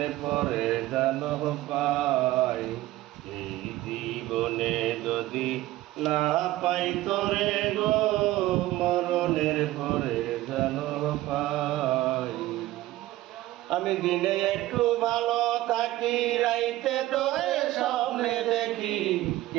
পরে জানো পাই, এই জীবনে যদি না পাই তোরে গো, মরণের পরে জানো পাই। আমি দিনে একটু ভালো থাকি, রাইতে তোরে স্বপ্নে দেখি।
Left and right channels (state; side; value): quieter; left; 16.3 dB